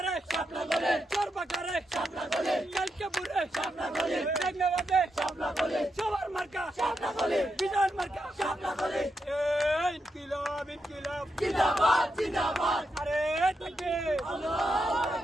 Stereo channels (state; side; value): normal; both; correlation 0.84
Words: শাপলা কোলে, চরবাকারে শাপলা কোলে, কালকেপুরে শাপলা কোলে, টেকনাবাদে শাপলা কোলে, সবার মার্কা শাপলা কোলে, বিজয় মার্কা শাপলা কোলে। ইনকিলাব ইনকিলাব জিন্দাবাদ জিন্দাবাদ, আরে তাকবীর আল্লাহু